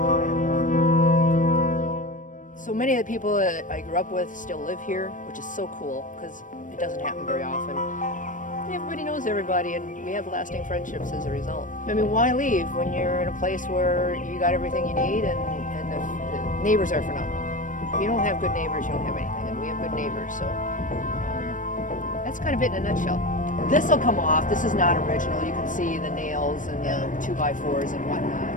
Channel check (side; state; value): right; late; 0.38 ms